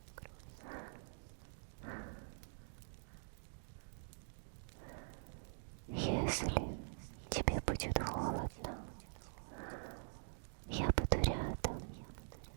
Если тебе будет холодно, я буду рядом,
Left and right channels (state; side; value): silent; left; digital silence